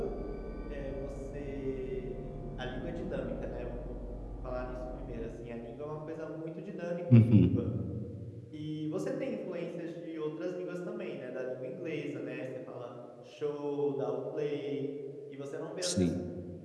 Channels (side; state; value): both; identical; correlation 1.00